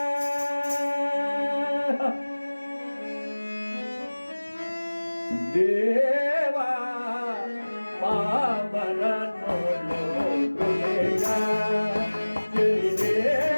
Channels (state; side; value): inverted; both; correlation -1.00